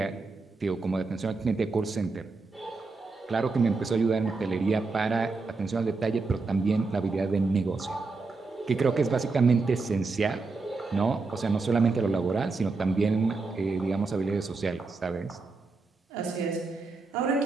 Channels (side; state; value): left; quieter; 3.9 dB